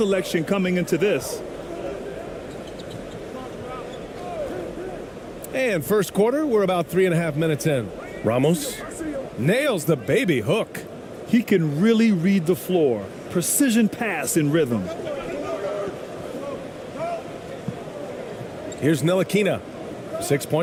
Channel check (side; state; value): both; identical; correlation 1.00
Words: coming into this. And first quarter, we're about 3.5 minutes in. Ramos nails the baby hook. He can really read the floor. Precision pass in rhythm. Here's Ntilikina. 6